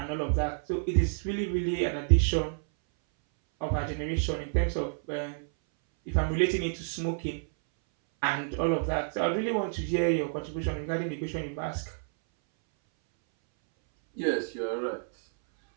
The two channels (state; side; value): silent; left; 58 dB below the other